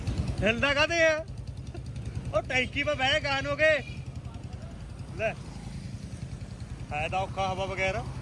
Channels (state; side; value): identical; both; correlation 1.00